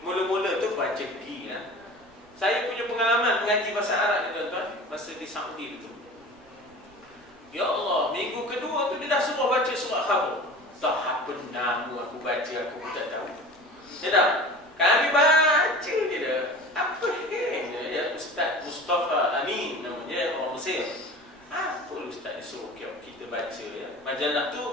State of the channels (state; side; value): noise; right; rumble, 29 dB below the sound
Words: mula-mula tu baca gi lah. Saya punya pengalaman mengaji bahasa Arab ni tuan-tuan, masa di Saudi tu. Ya Allah, minggu kedua tu dia dah suruh baca surah Khabar. Tak apa nama aku baca, aku pun tak tahu. Ya tak? Kami baca je dah. Apa dia? Ustaz Mustafa Amin namanya, orang Mesir. Apa ustaz ni suruh kita baca ya? Majalah